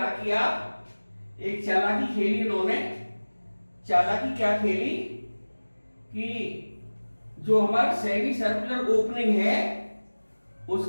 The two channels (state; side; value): inverted; both; correlation -1.00